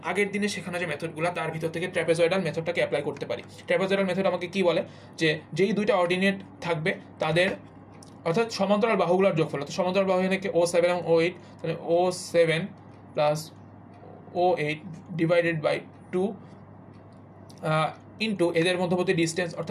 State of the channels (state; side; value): identical; both; correlation 1.00